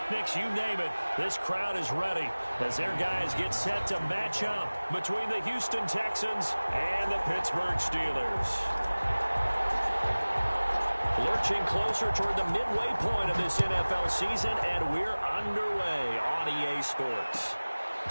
you name it. This crowd is ready as their guys get set to match up between the Houston Texans and the Pittsburgh Steelers. Lurching closer toward the midway point of this NFL season, and we're underway on EA Sports.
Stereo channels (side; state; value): both; inverted; correlation -1.00